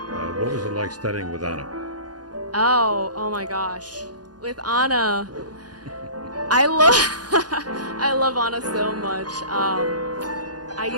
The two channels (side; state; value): left; late; 0.69 ms